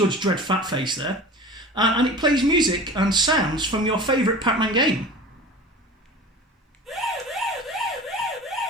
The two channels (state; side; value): normal; both; correlation 0.36